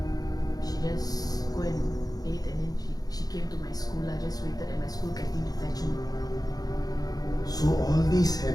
she just go and ate, and then she came to my school. I just waited at my school canteen to fetch me. So all this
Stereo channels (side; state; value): right; late; 0.18 ms